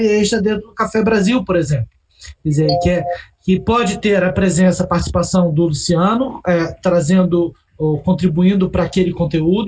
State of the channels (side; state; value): both; identical; correlation 1.00